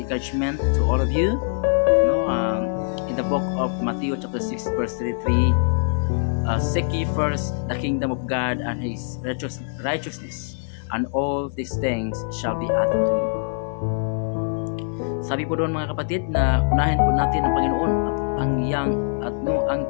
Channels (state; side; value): silent; right; digital silence